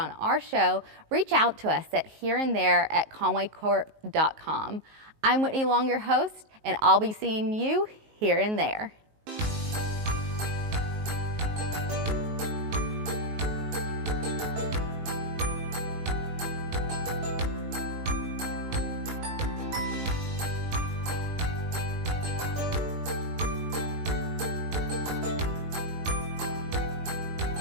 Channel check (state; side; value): late; left; 19 ms